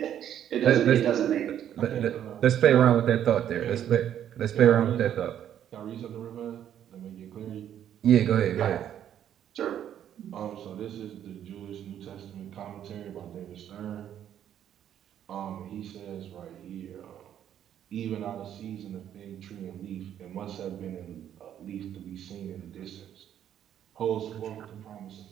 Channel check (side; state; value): left; quieter; 10.2 dB